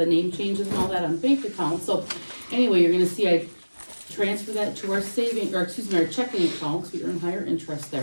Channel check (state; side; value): inverted; both; correlation -1.00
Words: name changes and all that on bank accounts. So anyway, you're gonna see I transfer that to our our checking accounts. We earn higher interest